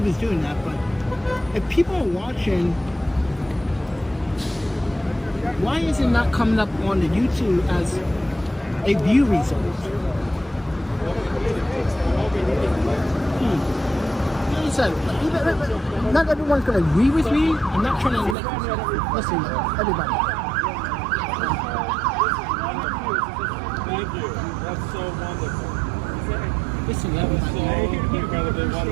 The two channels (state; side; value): drops out; left; at 18.4 s